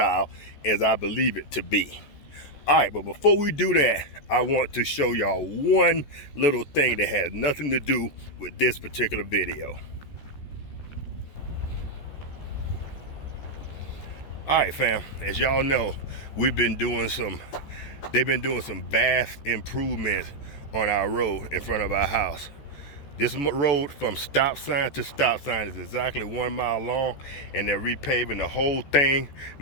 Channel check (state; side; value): late; right; 14 ms